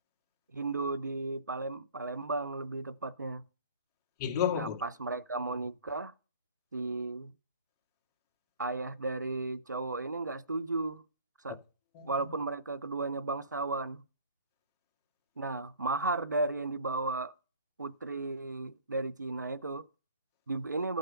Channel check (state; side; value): inverted; both; correlation -0.48